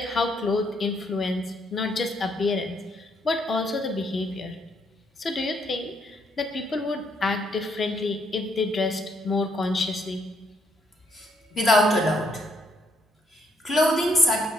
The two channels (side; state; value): both; normal; correlation 0.72